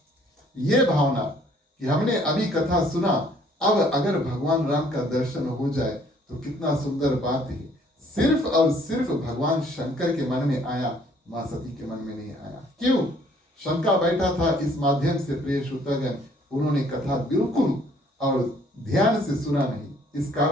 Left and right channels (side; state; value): both; normal; correlation 0.61